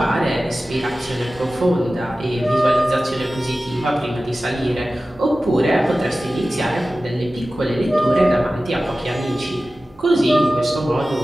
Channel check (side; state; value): right; noise; hum, 28 dB below the sound